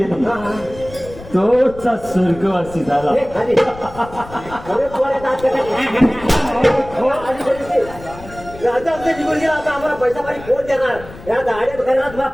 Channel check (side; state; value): left; noise; rumble, 17 dB below the sound